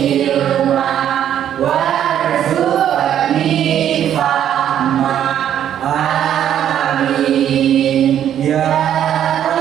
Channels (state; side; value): quieter; left; 10.3 dB